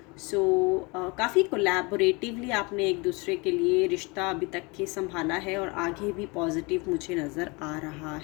सो काफ़ी कोलैबोरेटिवली आपने एक दूसरे के लिए रिश्ता अभी तक के संभाला है और आगे भी पॉजिटिव मुझे नज़र आ रहा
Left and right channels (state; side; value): quieter; right; 27.6 dB